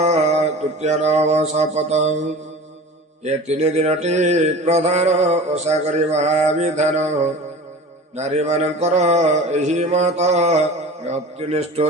तृतीय नव शपथ ये 3 दिनटी प्रधान ओषा करिबा विधान नारी मानकर एही मत अति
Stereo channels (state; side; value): normal; both; correlation 0.37